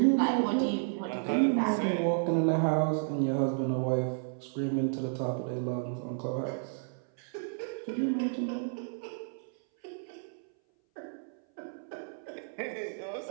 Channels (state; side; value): silent; left; 57 dB below the other